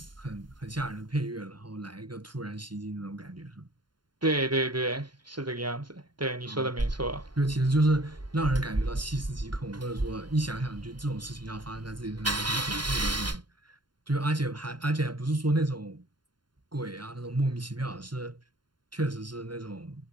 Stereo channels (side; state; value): left; late; 0.71 ms